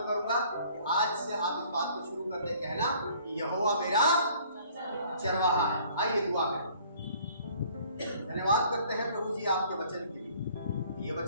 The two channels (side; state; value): both; inverted; correlation -0.56